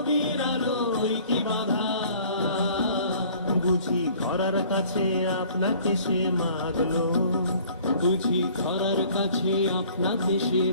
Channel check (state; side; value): inverted; both; correlation -0.53